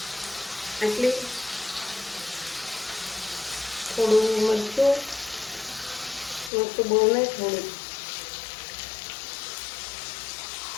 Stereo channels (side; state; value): right; drops out; at 6.5 s